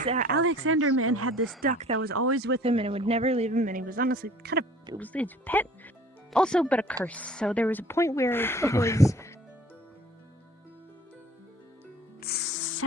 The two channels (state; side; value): normal; both; correlation 0.50